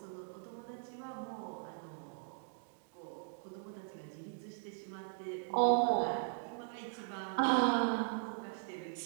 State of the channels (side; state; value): left; silent; digital silence